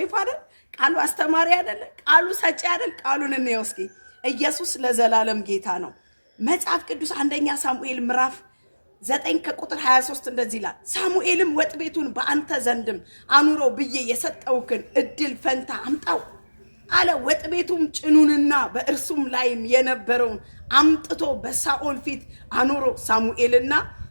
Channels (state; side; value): inverted; both; correlation -1.00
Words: አይደል? ቃሉ አስተማሪ አይደል? ቃሉ ሰጪ አይደል? ቃሉን እንየው እስኪ። ኢየሱስ ለዘላለም ጌታ ነው። መጽሐፍ ቅዱስ አንደኛ ሳሙኤል ምዕራፍ 9 ከቁጥር 23 እንደዚህ ይላል። ሳሙኤልም ወጥ ቤቱን በአንተ ዘንድም አኑሮ ብዬ የሰጠውክን እድል ፈንታ አምጣው አለ። ወጥ ቤቱም ጭኑንና በእርሱም ላይም የነበረውን አምጥቶ በሳኦል ፊት አኑሮ።